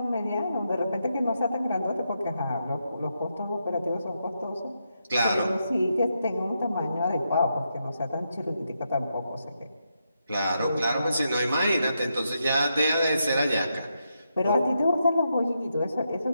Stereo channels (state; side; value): inverted; both; correlation -0.83